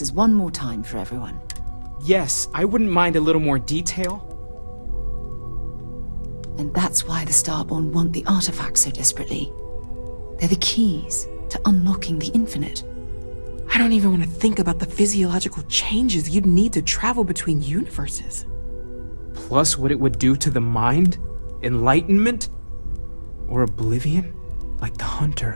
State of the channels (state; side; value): inverted; both; correlation -1.00